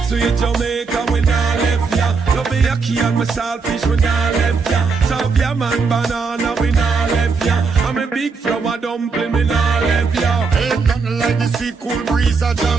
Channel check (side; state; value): left; quieter; 4.8 dB